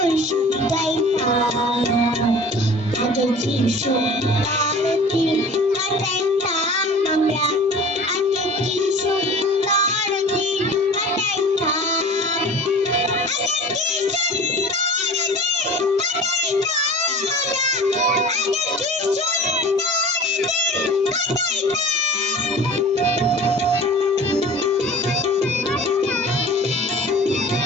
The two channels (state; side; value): normal; both; correlation 0.41